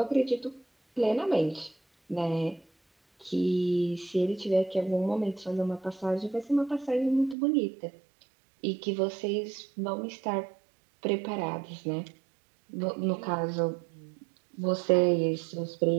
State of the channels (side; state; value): left; drops out; at 7.4 s